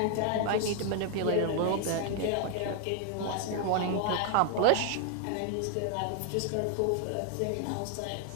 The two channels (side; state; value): both; different; correlation 0.00